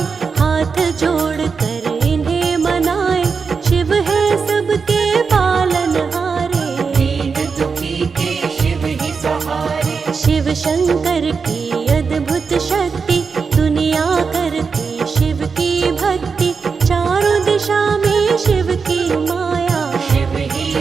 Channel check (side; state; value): left; quieter; 5.3 dB